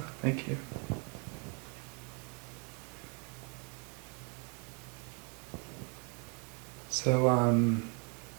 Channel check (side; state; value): left; quieter; 36.2 dB